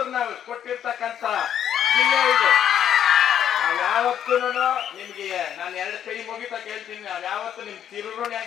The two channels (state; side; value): quieter; right; 9.7 dB